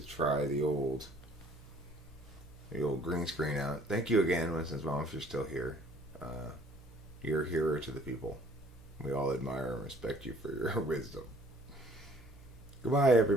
try the old green screen out. Thank you again, Winston's mom, if you're still here. You're a hero to the people. We all admire and respect you for your wisdom. Goodbye,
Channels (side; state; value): both; normal; correlation 0.56